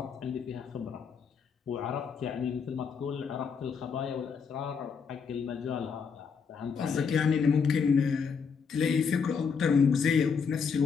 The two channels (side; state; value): right; quieter; 6.0 dB